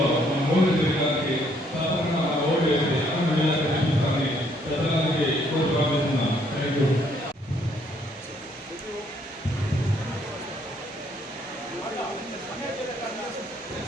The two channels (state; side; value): normal; both; correlation 0.67